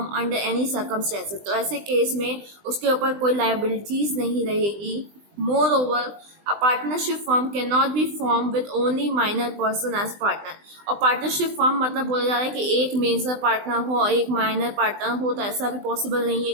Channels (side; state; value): left; late; 20 ms